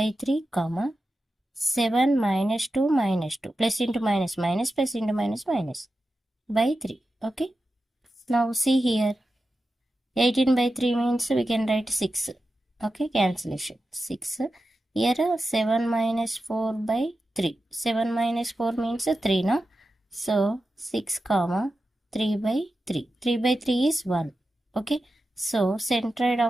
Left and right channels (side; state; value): both; normal; correlation 0.91